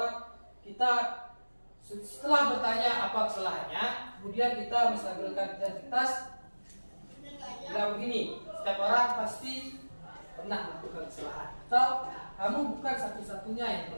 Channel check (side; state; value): both; inverted; correlation -1.00